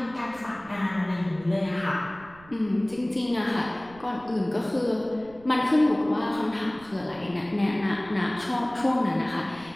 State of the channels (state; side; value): noise; right; rumble, 23 dB below the sound